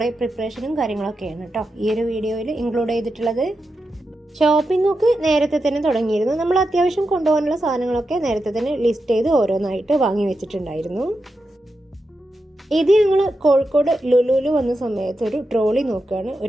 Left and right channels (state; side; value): normal; both; correlation 0.88